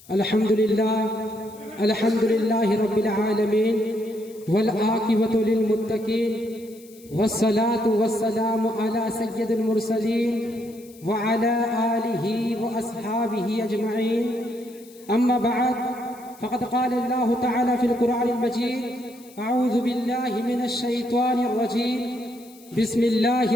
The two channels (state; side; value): noise; left; hiss, 24 dB below the sound